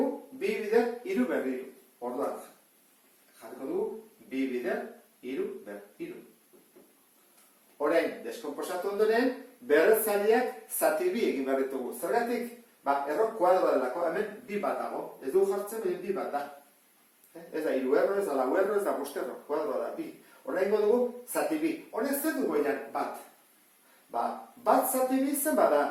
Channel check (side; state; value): both; identical; correlation 1.00